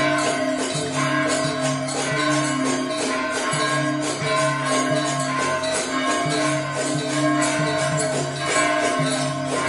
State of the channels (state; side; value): identical; both; correlation 1.00